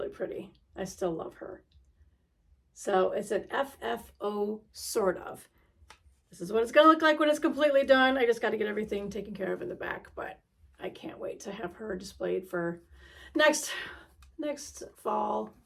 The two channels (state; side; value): identical; both; correlation 1.00